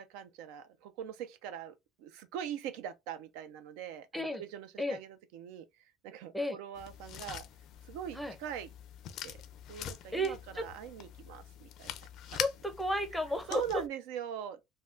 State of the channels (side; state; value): both; normal; correlation 0.54